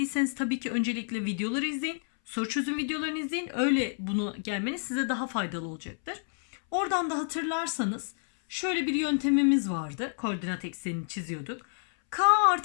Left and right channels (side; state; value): right; silent; 58 dB below the other